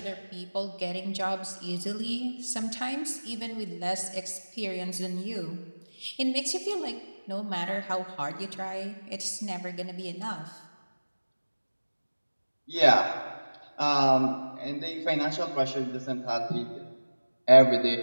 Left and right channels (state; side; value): inverted; both; correlation -1.00